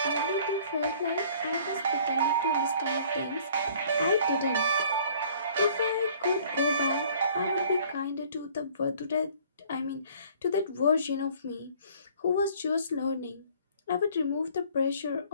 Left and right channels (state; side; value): inverted; both; correlation -0.55